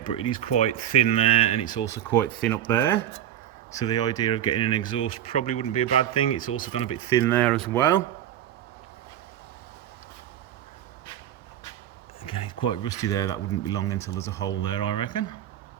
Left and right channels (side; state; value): left; quieter; 11.1 dB